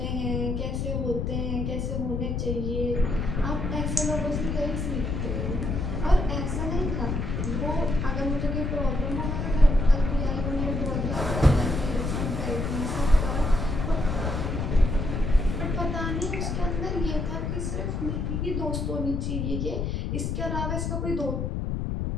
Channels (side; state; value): left; noise; rumble, 1 dB below the sound